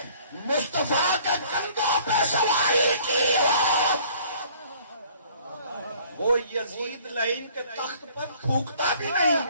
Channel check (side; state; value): both; inverted; correlation -0.55